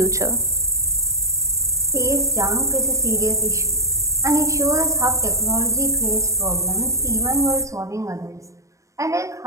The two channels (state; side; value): late; left; 0.15 ms